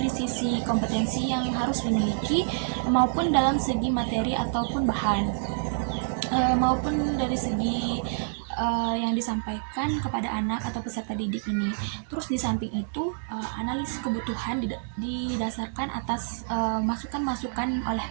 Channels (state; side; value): silent; left; digital silence